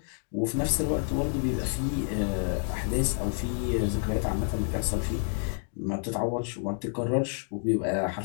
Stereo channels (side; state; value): right; silent; 59 dB below the other